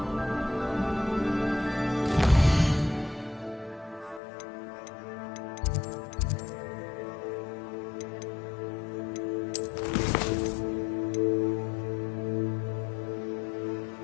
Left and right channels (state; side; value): drops out; right; at 4.2 s